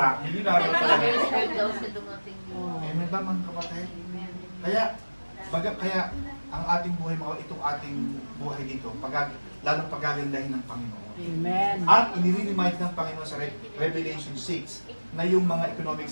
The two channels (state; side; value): inverted; both; correlation -1.00